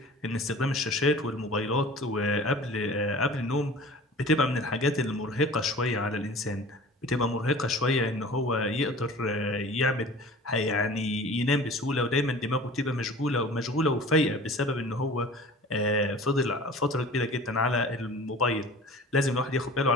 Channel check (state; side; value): normal; both; correlation 0.42